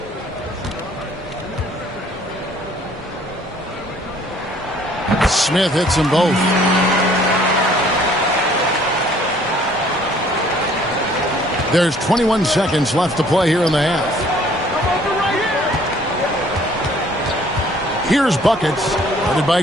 Smith hits them both. There's 21 seconds left to play here in the half. Here's buckets, headed by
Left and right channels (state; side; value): normal; both; correlation 0.58